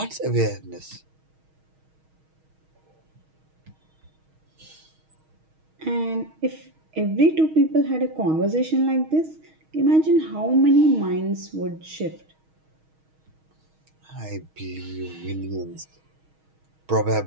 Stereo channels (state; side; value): late; left; 6.3 ms